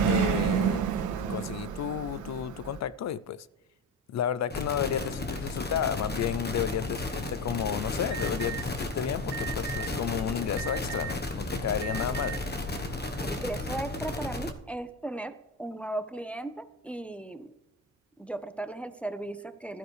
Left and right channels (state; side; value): normal; both; correlation 0.22